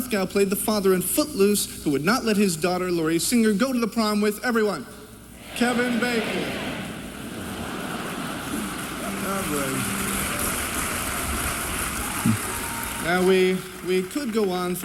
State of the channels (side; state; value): both; identical; correlation 1.00